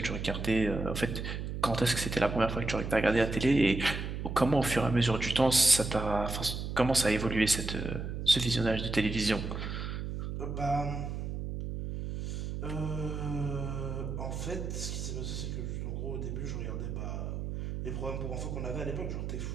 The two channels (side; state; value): right; noise; hum, 4 dB below the sound